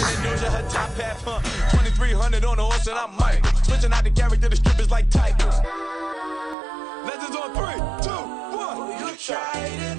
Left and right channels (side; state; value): left; drops out; at 6.6 s